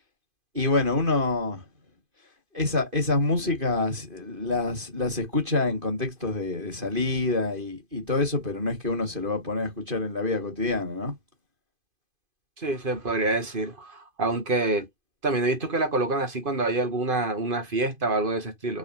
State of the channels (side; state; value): left; late; 2.5 ms